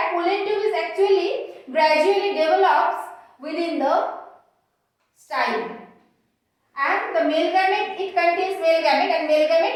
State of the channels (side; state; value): both; identical; correlation 1.00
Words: pollen tube is actually gradually develops within the style. And the male gamete, it contains male gamete, and male